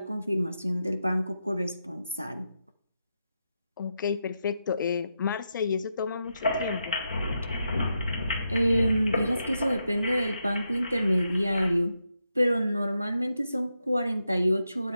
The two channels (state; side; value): inverted; both; correlation -0.85